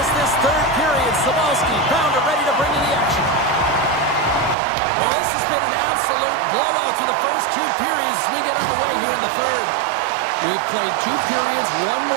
this third period. Sabalski, Pounder ready to bring you the action. Well, this has been an absolute blowout through the first 2 periods as we get underway here in the third. We've played 2 periods, 1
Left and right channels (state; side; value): drops out; left; at 4.5 s